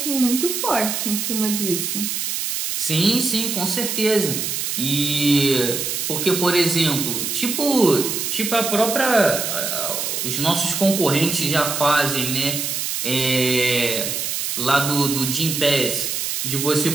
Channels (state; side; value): noise; right; hiss, 2 dB below the sound